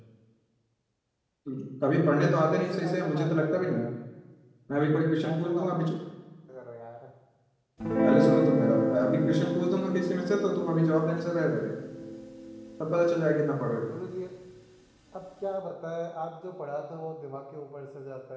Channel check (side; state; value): both; identical; correlation 1.00